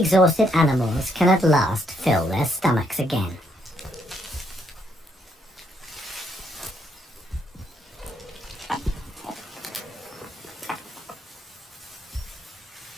animals can at last fill their stomachs again.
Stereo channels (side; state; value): both; normal; correlation 0.73